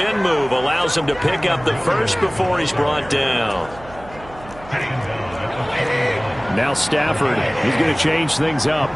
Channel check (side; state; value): right; noise; hum, 19 dB below the sound